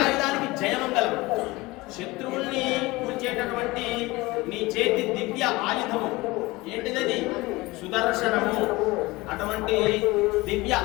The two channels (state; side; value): quieter; right; 21.5 dB